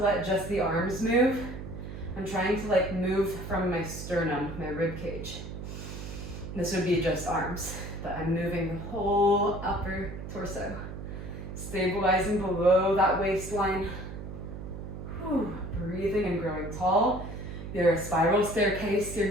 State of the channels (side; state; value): right; noise; hum, 9 dB below the sound